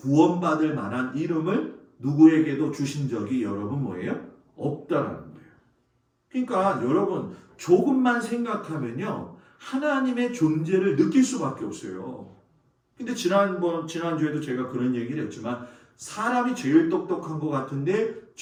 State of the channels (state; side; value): identical; both; correlation 1.00